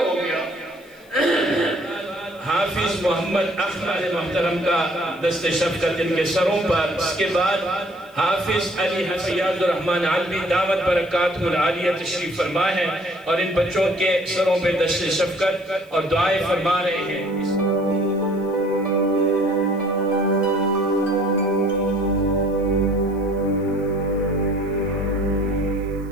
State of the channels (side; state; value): left; noise; hiss, 29 dB below the sound